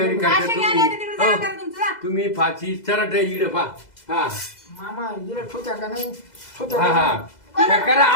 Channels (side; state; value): right; late; 2.0 ms